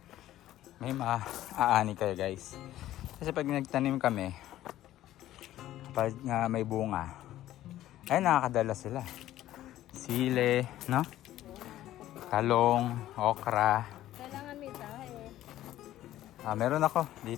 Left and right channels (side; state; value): right; quieter; 13.8 dB